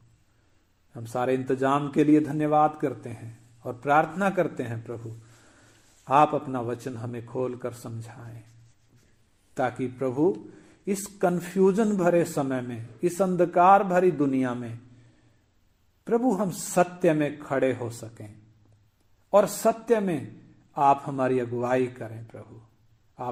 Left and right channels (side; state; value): both; identical; correlation 1.00